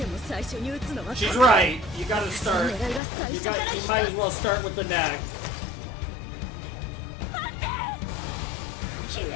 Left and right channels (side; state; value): right; drops out; at 3.0 s